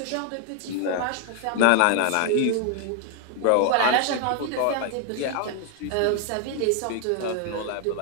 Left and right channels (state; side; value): different; both; correlation 0.00